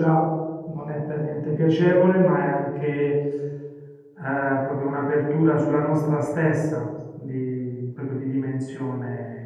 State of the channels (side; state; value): both; identical; correlation 1.00